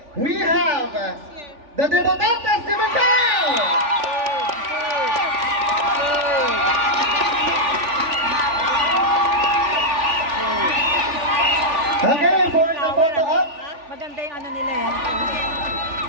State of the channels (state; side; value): late; left; 3.4 ms